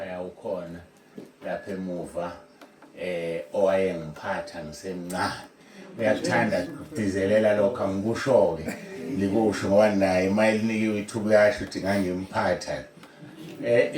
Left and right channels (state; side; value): identical; both; correlation 1.00